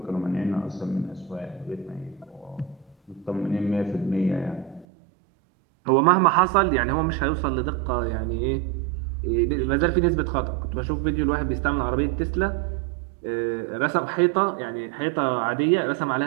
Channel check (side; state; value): left; drops out; at 4.9 s